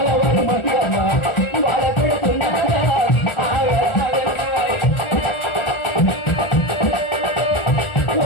మంగమ్మ గోల పెడుతున్నాడా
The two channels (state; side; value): late; right; 1.4 ms